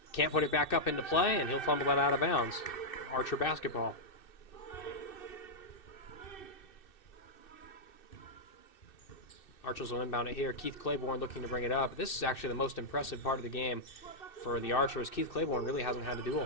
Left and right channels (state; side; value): late; right; 2.6 ms